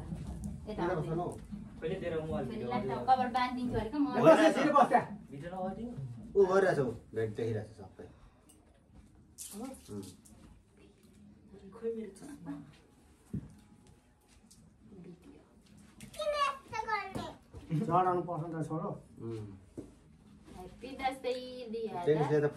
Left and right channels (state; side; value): identical; both; correlation 1.00